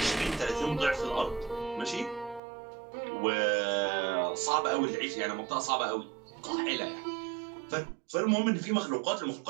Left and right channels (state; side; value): drops out; left; at 2.4 s